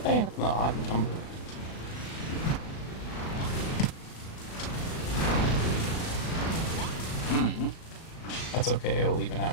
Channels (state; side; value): late; right; 37 ms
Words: I end up in the odd number? Mm-hmm. That's okay, I'll even